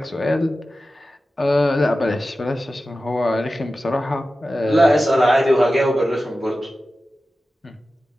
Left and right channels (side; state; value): both; normal; correlation 0.94